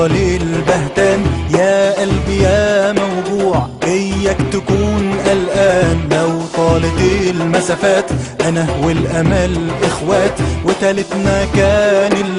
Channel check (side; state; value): both; identical; correlation 1.00